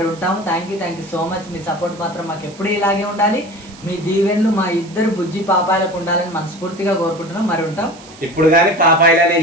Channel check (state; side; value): noise; right; hiss, 21 dB below the sound